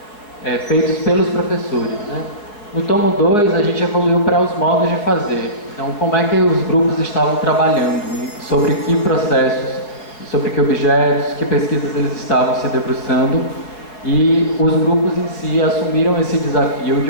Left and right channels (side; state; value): right; late; 4.9 ms